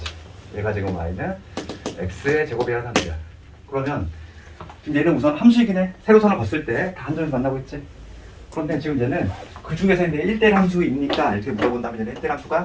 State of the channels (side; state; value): both; identical; correlation 1.00